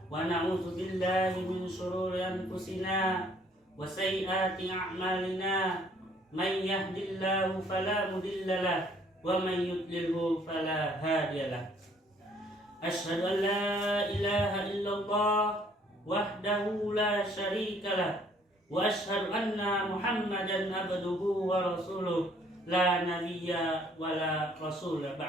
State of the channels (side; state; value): both; normal; correlation 0.62